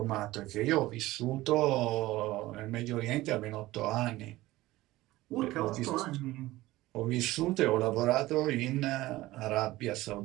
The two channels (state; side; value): quieter; left; 17.7 dB